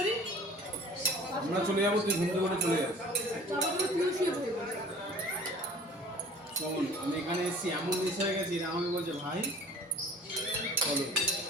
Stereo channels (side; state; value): both; normal; correlation 0.47